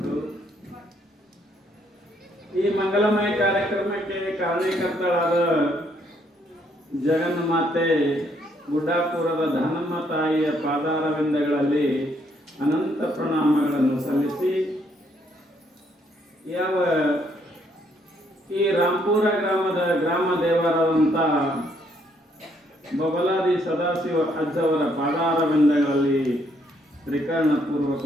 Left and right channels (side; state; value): both; normal; correlation 0.70